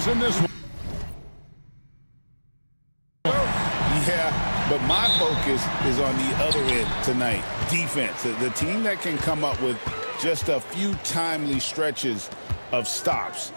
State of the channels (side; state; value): both; inverted; correlation -1.00